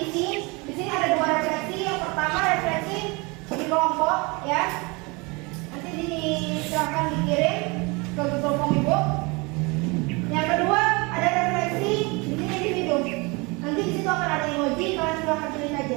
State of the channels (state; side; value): quieter; left; 27.4 dB